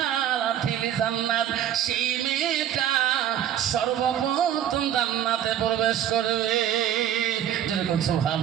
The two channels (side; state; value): left; quieter; 10.5 dB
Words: জান্নাত, সেই মেয়েটা সর্বপ্রথম জান্নাতে প্রবেশ করবে। যেরকম